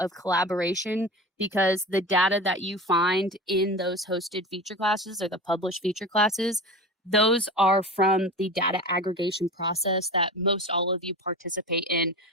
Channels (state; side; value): normal; both; correlation 0.30